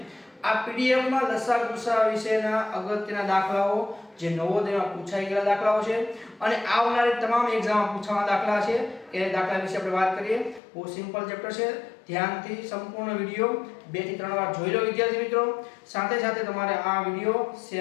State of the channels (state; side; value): drops out; right; at 10.6 s